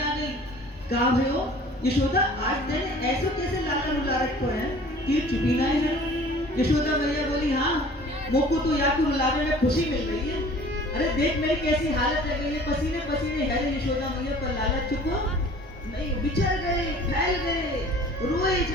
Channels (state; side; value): normal; both; correlation 0.48